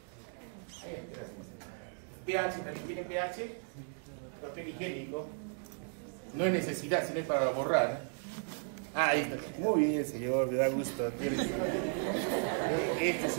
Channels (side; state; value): left; silent; 54 dB below the other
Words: Gracias. pH, ¿también tiene pH? Papel higiénico. No es necesidad, sino es para borrar. Ahí está. Muy bien, señor, me da gusto. Este es